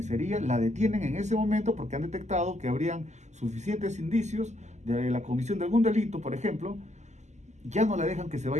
la detienen en ese momento porque han detectado que habrían suficientes indicios de la comisión de algún delito, por ejemplo, ya no la dejan que se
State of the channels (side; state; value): left; late; 0.33 ms